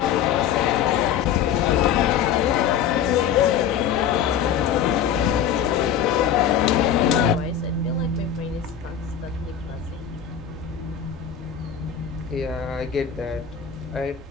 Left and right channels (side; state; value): right; quieter; 8.5 dB